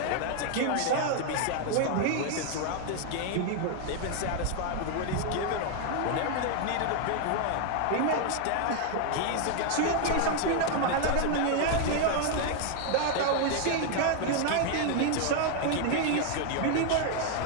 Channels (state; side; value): different; both; correlation 0.00